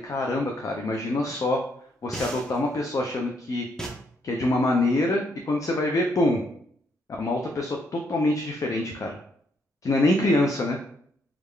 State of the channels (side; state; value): both; normal; correlation 0.73